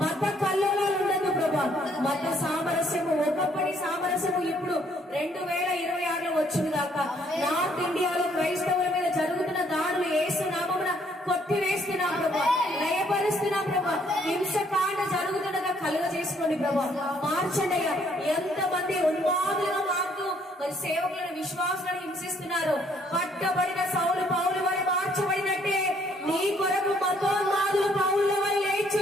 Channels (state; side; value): normal; both; correlation 0.66